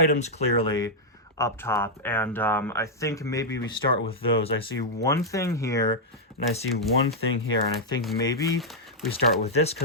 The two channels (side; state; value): both; normal; correlation -0.04